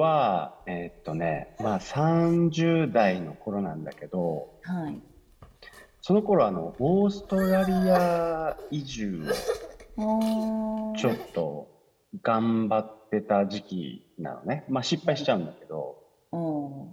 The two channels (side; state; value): both; identical; correlation 1.00